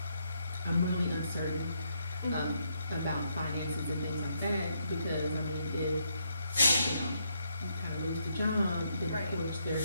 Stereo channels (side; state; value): both; inverted; correlation -0.76